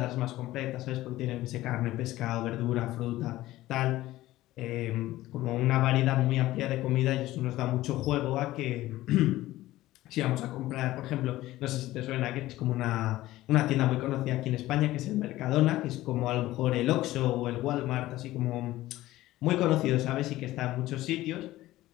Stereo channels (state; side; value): quieter; right; 16.3 dB